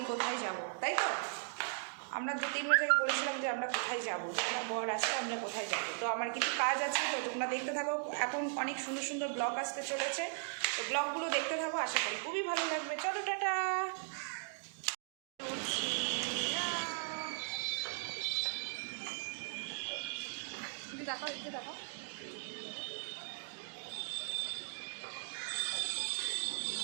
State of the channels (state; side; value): silent; left; digital silence